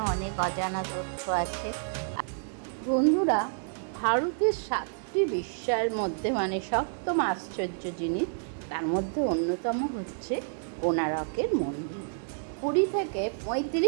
অনেক অজানা তথ্য আছে। বন্ধুরা, ভারতের 7টি বিস্ময়ের মধ্যে সপ্তম আশ্চর্য জিনিস, তার মধ্যে অন্যতম হচ্ছে কোণারকের মন্দির। পুরী থেকে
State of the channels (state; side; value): silent; left; digital silence